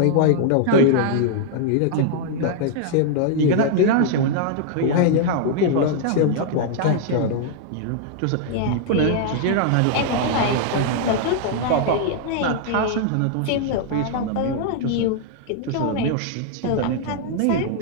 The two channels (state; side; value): different; both; correlation -0.01